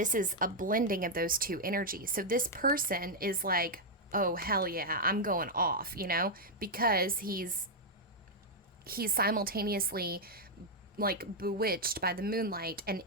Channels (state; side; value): normal; both; correlation -0.02